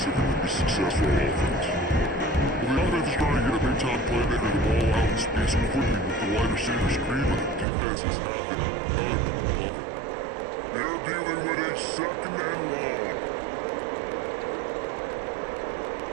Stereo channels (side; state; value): left; drops out; at 7.7 s